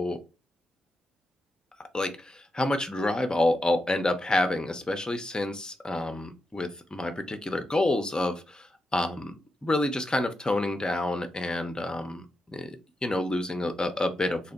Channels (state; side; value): normal; both; correlation 0.87